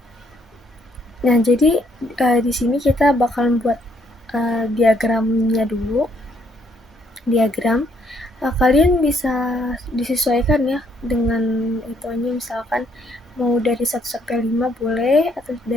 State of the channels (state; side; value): normal; both; correlation 0.70